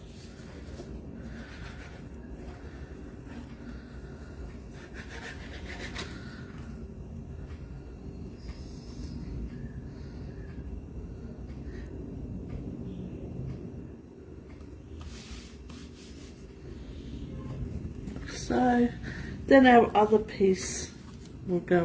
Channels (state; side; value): identical; both; correlation 1.00